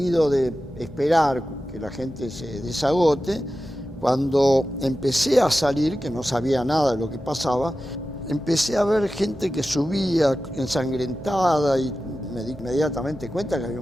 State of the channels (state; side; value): noise; right; hum, 24 dB below the sound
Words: de esperar que la gente se desagote, cuando empecé a salir, que no sabía nada de lo que pasaba, empecé a ver gente que subía ensangrentada y me di inmediatamente cuenta que había